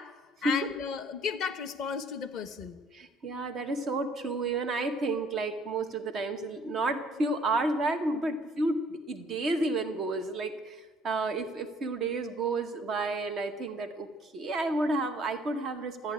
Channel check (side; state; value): both; normal; correlation 0.59